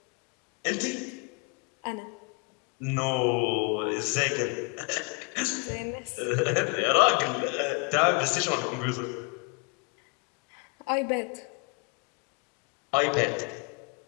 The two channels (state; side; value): quieter; right; 29.9 dB